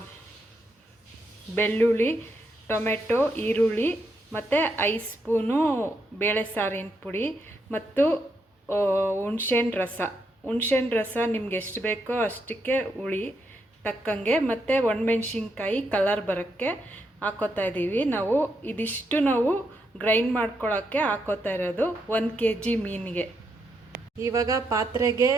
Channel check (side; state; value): both; normal; correlation 0.80